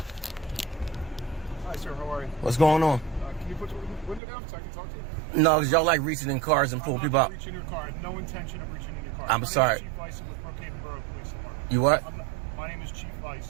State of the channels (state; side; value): drops out; left; at 4.2 s